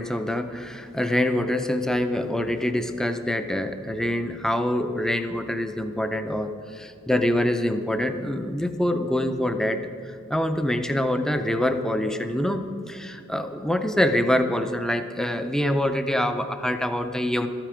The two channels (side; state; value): both; normal; correlation 0.84